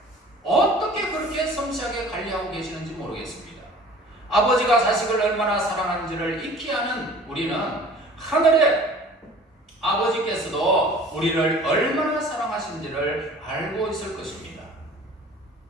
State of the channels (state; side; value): normal; both; correlation 0.47